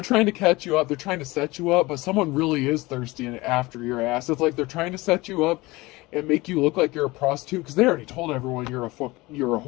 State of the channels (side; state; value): right; quieter; 21.4 dB